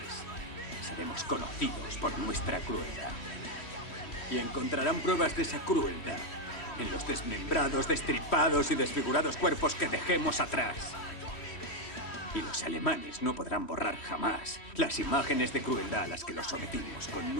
Seremos conocidos por nuestra crueldad. Y encontrarán pruebas de esa crueldad en los desmembrados, destripados y desfigurados cuerpos que dejemos atrás. Y los alemanes no podrán borrar jamás las imágenes de crueldad a las que los sometimos con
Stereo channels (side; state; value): right; late; 3.1 ms